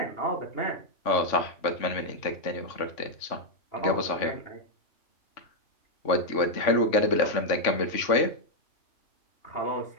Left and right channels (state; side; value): late; right; 3.5 ms